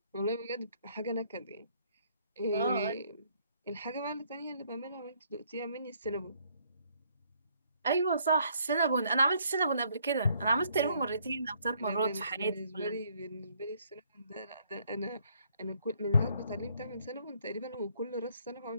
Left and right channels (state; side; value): inverted; both; correlation -0.66